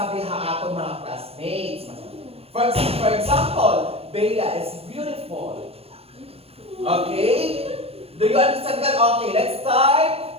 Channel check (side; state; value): left; late; 0.29 ms